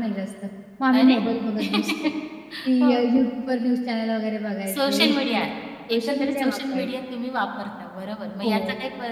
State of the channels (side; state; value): both; identical; correlation 1.00